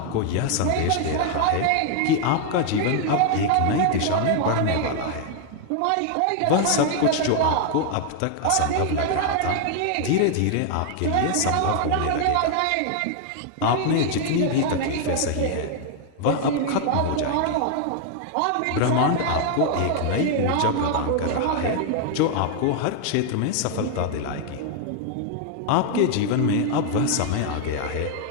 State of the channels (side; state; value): both; different; correlation 0.00